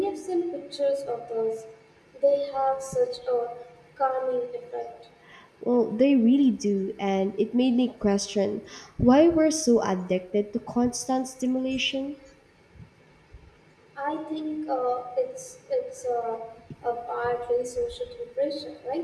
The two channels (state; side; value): identical; both; correlation 1.00